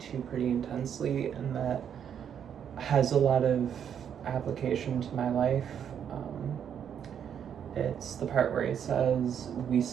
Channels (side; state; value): left; quieter; 8.5 dB